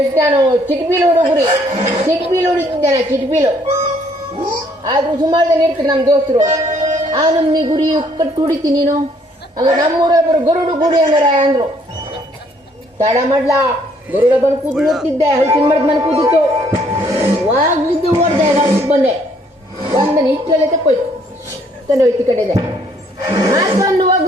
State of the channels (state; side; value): normal; both; correlation 0.65